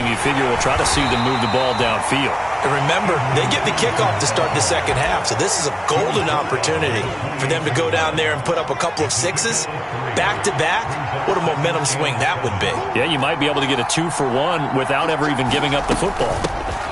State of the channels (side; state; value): both; identical; correlation 1.00